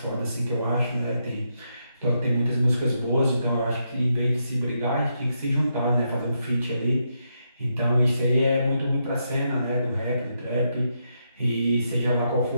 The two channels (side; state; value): both; inverted; correlation -0.81